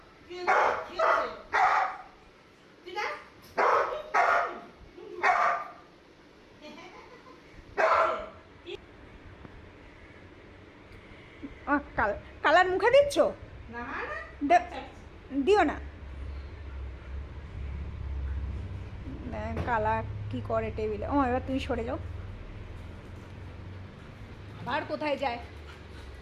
কালার মুখে দিচ্ছ? দিও না। কালা কি করে টেবিলে। ও এবার তুমি সরে যাও। আর কোথায় যায়?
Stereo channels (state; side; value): identical; both; correlation 1.00